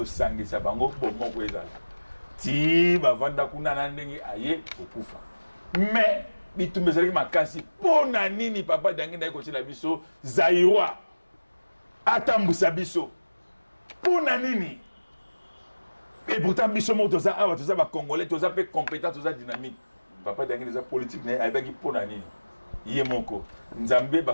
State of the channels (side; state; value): both; inverted; correlation -1.00